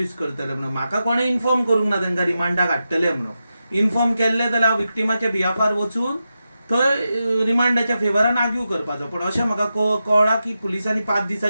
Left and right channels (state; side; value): inverted; both; correlation -0.89